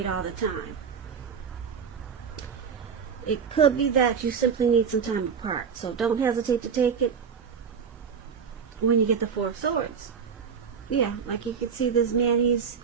all the time. It could be that you simply need some time apart. So don't hesitate to take it when you get the Four of Swords. Yeah, like you can see this man, he's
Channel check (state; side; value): quieter; left; 6.6 dB